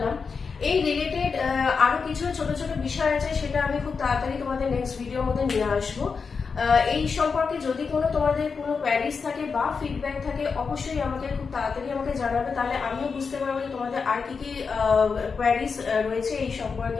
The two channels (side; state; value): right; quieter; 5.3 dB